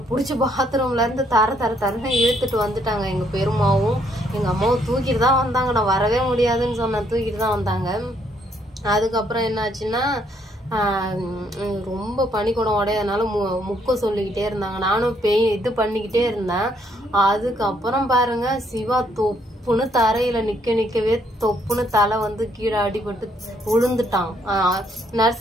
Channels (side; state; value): both; normal; correlation 0.70